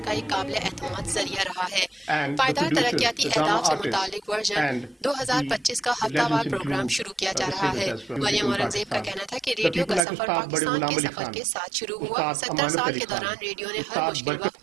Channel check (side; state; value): left; drops out; at 10.0 s